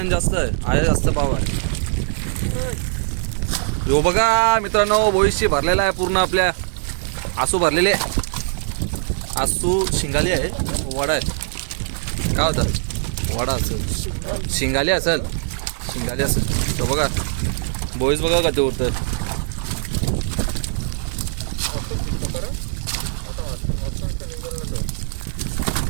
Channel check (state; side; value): silent; left; 65 dB below the other